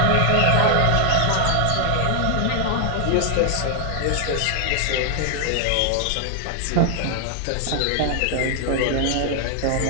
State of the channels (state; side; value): different; both; correlation 0.00